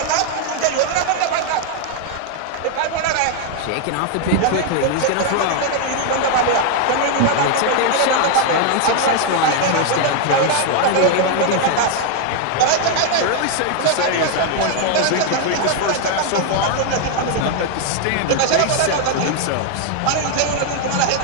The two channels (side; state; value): both; different; correlation 0.00